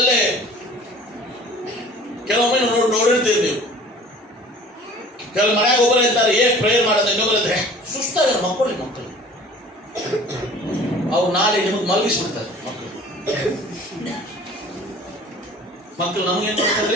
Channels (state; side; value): normal; both; correlation 0.47